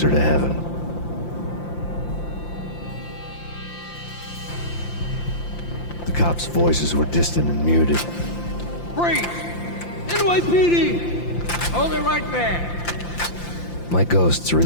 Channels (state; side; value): late; right; 5.8 ms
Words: to heaven. The cops' voices were distant and muted. Freeze! NYPD! Hold it right there! My ghosts